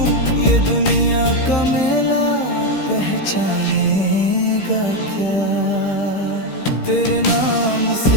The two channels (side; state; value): right; late; 15 ms